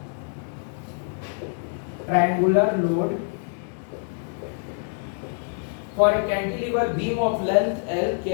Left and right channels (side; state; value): right; silent; digital silence